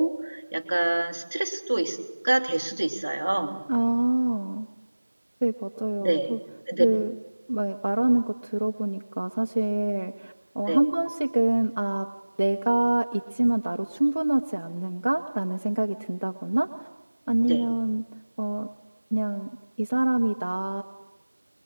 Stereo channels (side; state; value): both; inverted; correlation -1.00